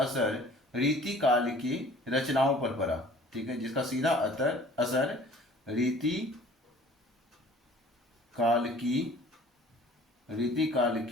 रीति काल की रचनाओं पर पड़ा, ठीक है, जिसका सीधा असर रीति काल की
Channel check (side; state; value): both; normal; correlation 0.50